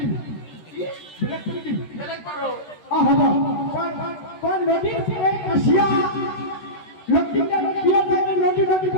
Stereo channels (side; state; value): right; late; 13 ms